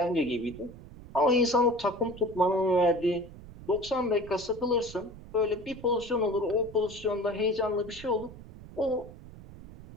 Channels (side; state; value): right; noise; rumble, 17 dB below the sound